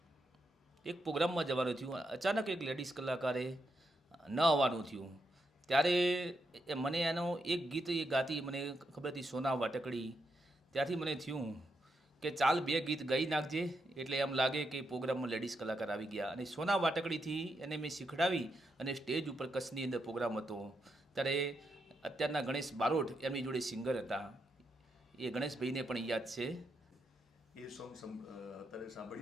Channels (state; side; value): normal; both; correlation 0.82